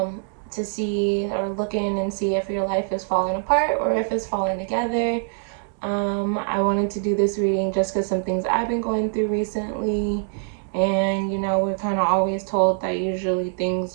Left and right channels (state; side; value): silent; left; 55 dB below the other